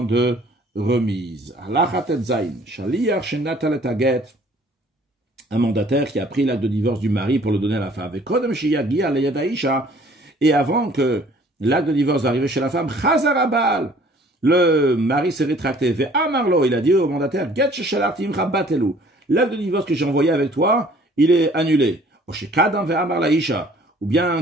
de remise. Un mandataire qui a pris l'acte de divorce du mari pour le donner à la femme. Et avant que l'acte de divorce arrive chez la femme, le mari s'est rétracté. Il a dit au mandataire, l'acte de divorce que j'ai envoyé avec toi, il est annulé. Ou bien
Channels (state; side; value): normal; both; correlation 0.55